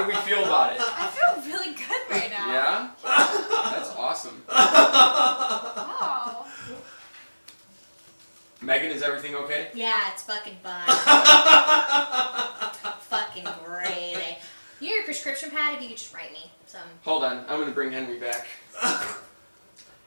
we feel about it? I feel really good right now. Yeah? That's awesome. Wow. Megan, is everything okay? Yeah, it's fucking fine. Fucking great. You know your prescription pad? If you could just write me some. Hold on, I'm gonna bring Henry back.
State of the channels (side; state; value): both; inverted; correlation -1.00